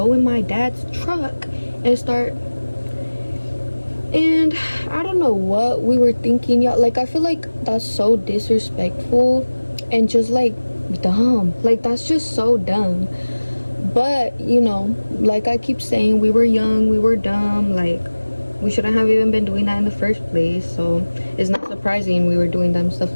in my dad's truck and start, and I don't know what we were thinking, y'all. Like I feel like that's so disrespectful and just like dumb. Like that's just so dumb. But you know, like I keep saying, we were young, we were dumb, like we shouldn't have even been doing that in the first place. So it's not surprising we were doing dumb stuff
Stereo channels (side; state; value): both; inverted; correlation -1.00